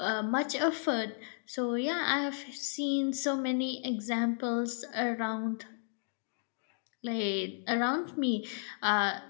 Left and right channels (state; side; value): silent; right; digital silence